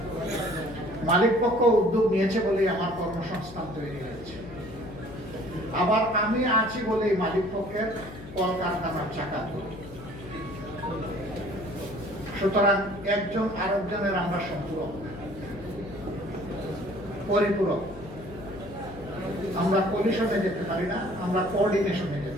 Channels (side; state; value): left; noise; hum, 15 dB below the sound